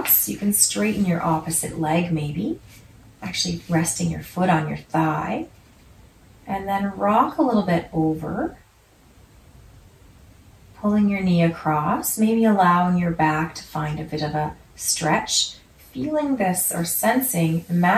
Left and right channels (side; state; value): both; identical; correlation 1.00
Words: You can straighten your opposite leg maybe, actually resting your foot on your thigh, and then rock a little bit over, pulling your knee across, maybe allowing your back to find a bit of a stretch, feeling this or sensing,